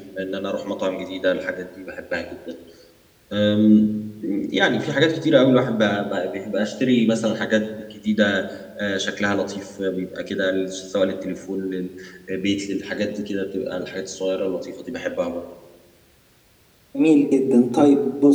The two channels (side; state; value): both; identical; correlation 1.00